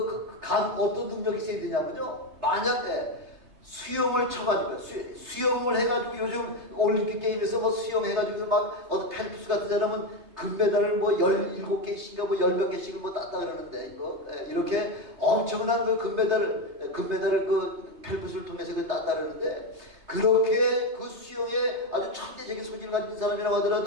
능력이 있어야 되냐면요, 만약에 수영을 쳐가지고 수영을 해가지고 요즘 올림픽 게임에서 수영해가지고 어떤 펠프스 같은 사람은 금메달을 17개씩인가 10몇 개씩을 땄다 그러는데, 이렇게 엄청난 그 금메달을 그 펠프스를 통해서 땄다 그러는데, 그렇게 그 수영에 아주 천재적인 소질을 가진 사람이라고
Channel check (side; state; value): left; late; 3.3 ms